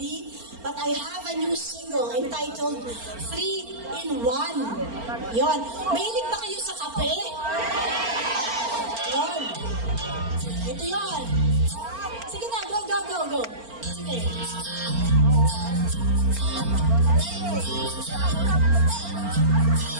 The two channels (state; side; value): late; left; 4.4 ms